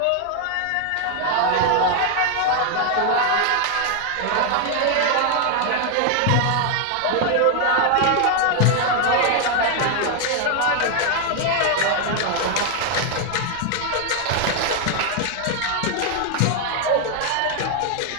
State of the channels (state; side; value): different; both; correlation 0.00